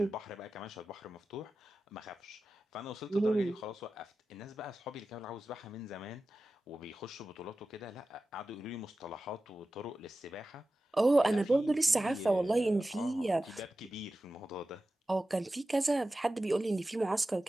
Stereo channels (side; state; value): both; normal; correlation 0.94